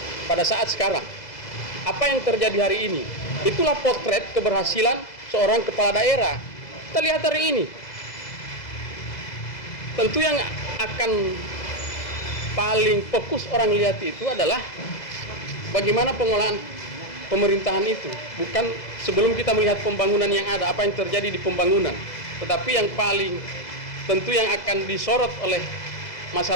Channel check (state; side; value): late; right; 2.0 ms